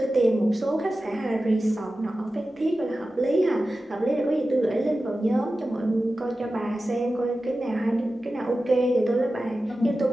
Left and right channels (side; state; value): both; normal; correlation 0.94